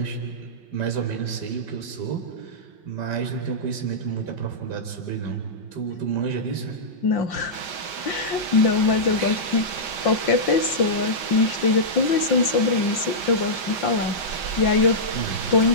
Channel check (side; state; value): right; late; 5.7 ms